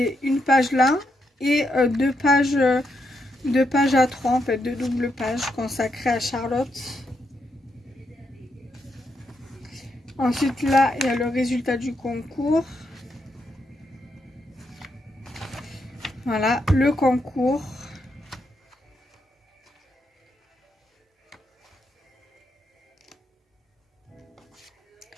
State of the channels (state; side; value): normal; both; correlation 0.81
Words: une page là et deux pages A3 en fait, deux doubles pages consacrées à Charlotte. Ensuite là, il y a le résultat du concours. Voilà, le concours.